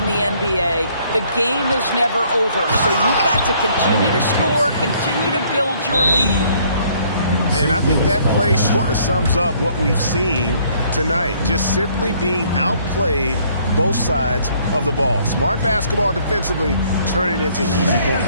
the NBA, the game is never over. So you've got to continue to score, continue to build your lead. And I think that play sort of sums up what we've seen tonight. Just simply being outplayed both sides of the ball. Smart basketball defensively, turning into easy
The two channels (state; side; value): inverted; both; correlation -0.63